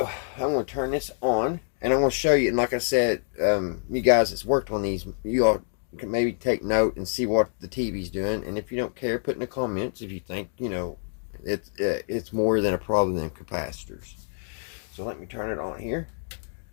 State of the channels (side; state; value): right; silent; digital silence